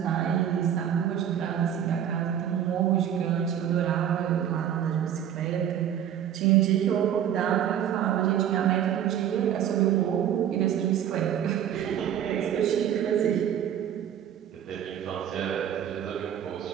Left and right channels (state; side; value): quieter; left; 9.8 dB